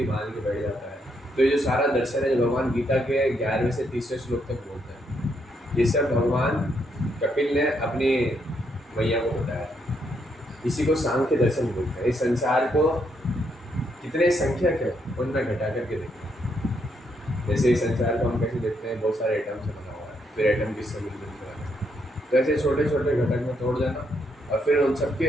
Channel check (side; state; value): both; normal; correlation 0.76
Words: बांध के बैठ जाता है। तो ये जो सारा दर्शन है जो भगवान गीता के 11वें से 30वें श्लोक तक बोलते हैं, ये सब भगवान कपिल ने अपनी मैया को बताया। इसी को सांख्य दर्शन बोलते हैं। इस संसार को कितने संख्यक है उनमें घटा करके देखते हैं। जैसे इस संसार को हम कैसे देखते हैं, बहुत सारे एटम से बना हुआ है, फिर एटम किससे मिलकर बना है, तो ऐसे छोटे छोटे घटक में तोड़ देना और फिर उन